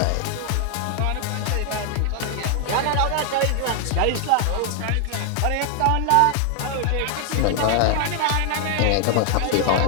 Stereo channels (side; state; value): both; different; correlation 0.00